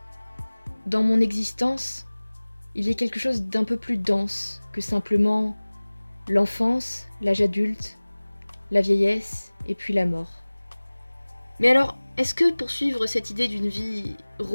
dans mon existence, il y ait quelque chose d'un peu plus dense que simplement l'enfance, l'âge adulte, la vieillesse et puis la mort. Mais alors, est-ce que poursuivre cette idée d'une vie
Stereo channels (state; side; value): inverted; both; correlation -1.00